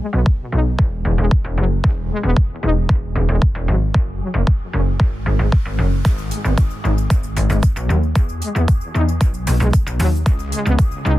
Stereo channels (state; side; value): normal; both; correlation 0.95